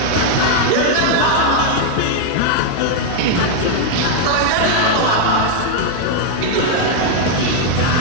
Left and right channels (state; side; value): different; both; correlation 0.00